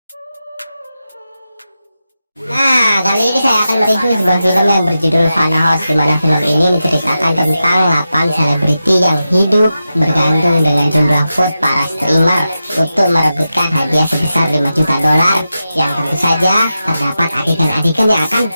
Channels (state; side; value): inverted; both; correlation -0.91